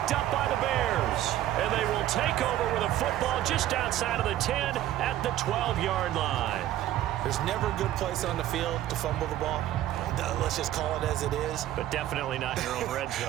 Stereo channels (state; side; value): quieter; left; 13.2 dB